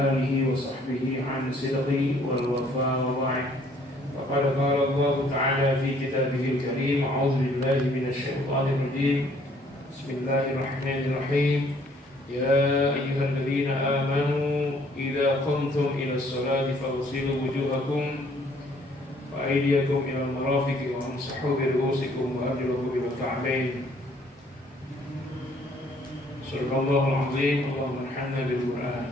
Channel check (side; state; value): both; normal; correlation 0.61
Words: alihi wa sahbihi an sidqi wal wafa wa ba'd. Faqad qala Allah ta'ala fi kitabihil karim, a'udzu billahi minasy syaithanir rajim. Bismillahirrahmanirrahim. Ya ayyuhalladzina amanu idza qumtum ila sholati faghsilu wujuhakum wa aydiyakum ila al-marafiqi wa amsahu bi ru'usikum wa arjulakum ila al-ka'bayn. Subhanallahul azim. Allahumma arhamna bil Qur'an.